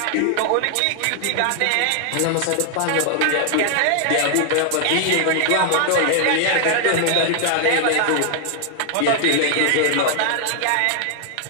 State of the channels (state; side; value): different; both; correlation 0.00